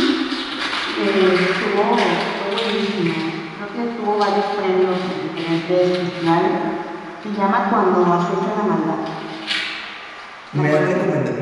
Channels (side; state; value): both; identical; correlation 1.00